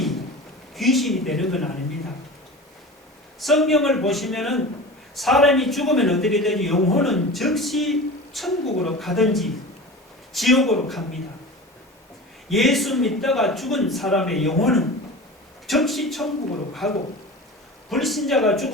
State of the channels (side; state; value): both; normal; correlation 0.33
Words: 귀신이 되는 건 아닙니다. 성경을 보시면은 사람이 죽으면 어떻게 되지? 영혼은 즉시 천국으로 가든지 지옥으로 갑니다. 예수 믿다가 죽은 사람의 영혼은 즉시 천국으로 가고, 불신자가